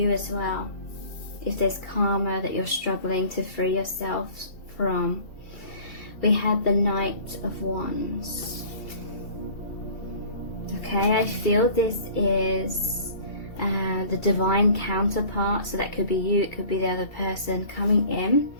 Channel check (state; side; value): late; right; 2.7 ms